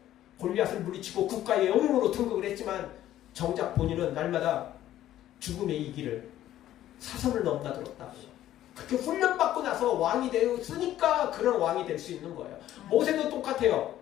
골리앗을 물리치고 국가의 영웅으로 등극을 했지만 정작 본인은 날마다 죽음의 이 길을 사선을 넘나들었다고요. 그렇게 훈련받고 나서 왕이 되었으니까 그런 왕이 될 수 있는 거예요. 모세도 똑같아요.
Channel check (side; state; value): right; quieter; 12.9 dB